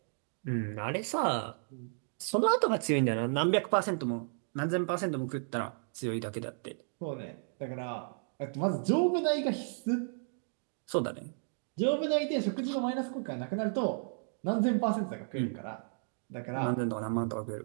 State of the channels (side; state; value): left; silent; digital silence